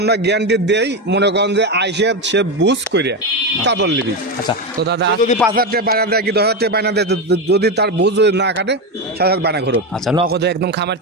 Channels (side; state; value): both; normal; correlation 0.13